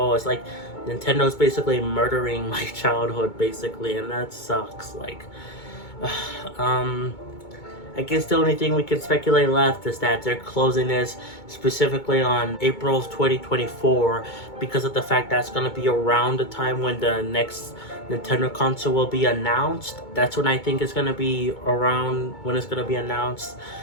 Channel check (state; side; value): late; right; 2.2 ms